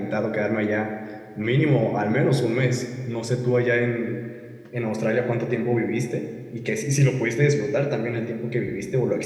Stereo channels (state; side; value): identical; both; correlation 1.00